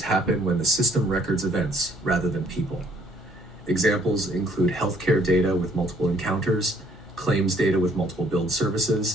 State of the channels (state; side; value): normal; both; correlation 0.63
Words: happen when the system records events rather than people. Examples include healthcare data with multiple encounters, claims data with multiple billed